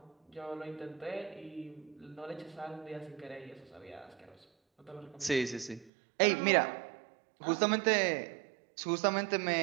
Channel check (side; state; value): left; drops out; at 5.9 s